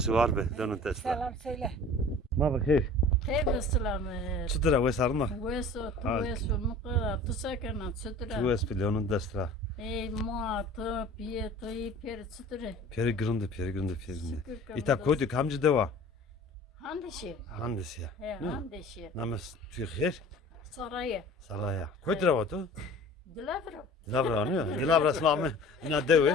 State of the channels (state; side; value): normal; both; correlation 0.44